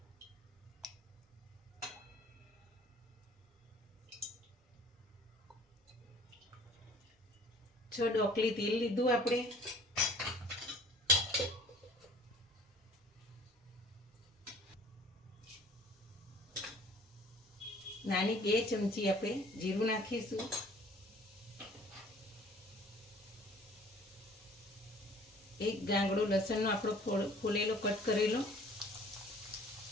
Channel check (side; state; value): both; normal; correlation 0.51